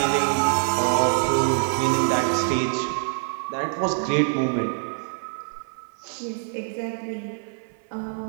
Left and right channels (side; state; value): left; silent; 55 dB below the other